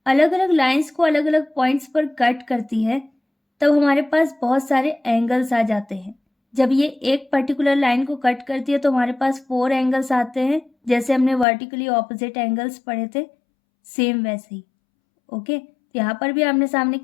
अलग अलग लाइंस को अलग अलग पॉइंट्स पर कट करती है तब हमारे पास बहुत सारे एंगल्स आ जाते हैं। जब ये एक पर्टिकुलर लाइन को कट करती है तो हमारे पास 4 एंगल्स आते हैं, जैसे हमने वर्टिकली ऑपोजिट एंगल्स पढ़े थे, सेम वैसे ही। ओके, यहाँ पर भी आमने सामने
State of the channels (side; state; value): right; drops out; at 11.5 s